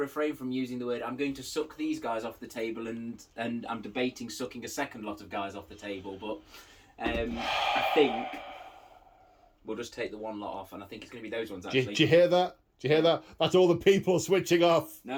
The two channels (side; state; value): both; identical; correlation 1.00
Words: from using the word. I'm going to suck these guys off the table, and I'm debating sucking a second lot of guys off the table. But I think we'll just take the one lot off, and I think it's going to be those ones. Actually, do you hear that? Do you hear that? That's all the people switching off.